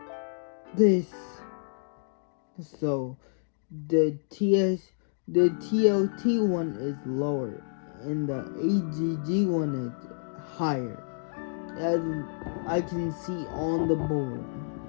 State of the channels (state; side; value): silent; right; digital silence